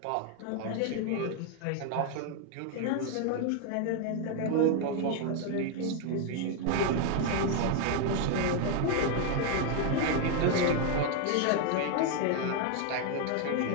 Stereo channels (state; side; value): different; both; correlation 0.01